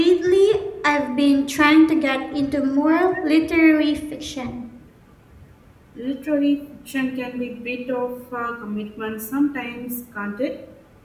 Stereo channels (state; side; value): identical; both; correlation 1.00